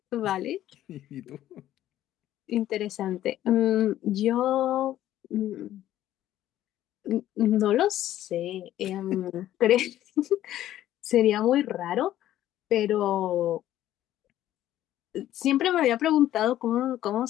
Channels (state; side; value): quieter; right; 13.0 dB